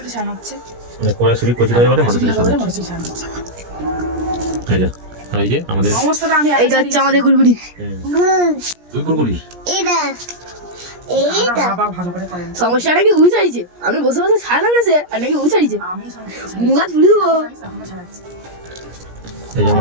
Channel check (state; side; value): late; left; 17 ms